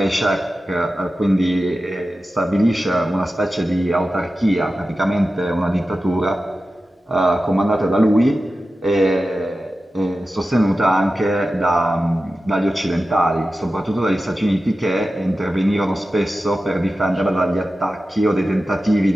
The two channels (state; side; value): normal; both; correlation 0.93